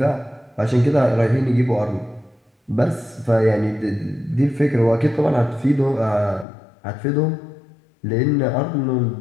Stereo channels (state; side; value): drops out; right; at 6.5 s